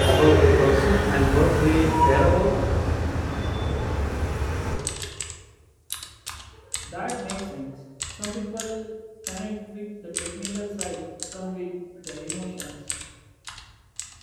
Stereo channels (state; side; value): identical; both; correlation 1.00